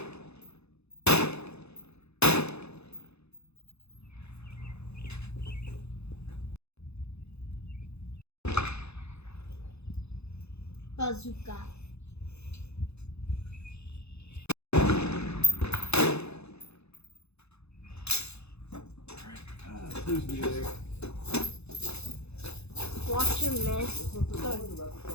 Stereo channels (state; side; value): late; right; 0.80 ms